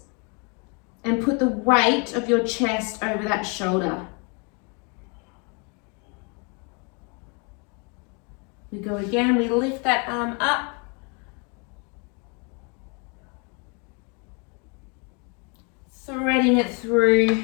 and put the weight of your chest over that shoulder. We go again, we lift that arm up. Threading it through.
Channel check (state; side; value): quieter; right; 33.8 dB